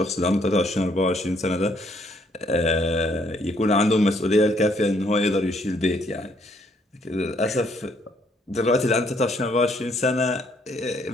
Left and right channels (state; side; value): normal; both; correlation 0.68